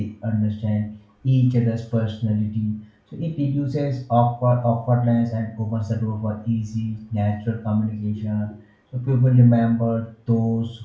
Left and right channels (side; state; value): both; identical; correlation 1.00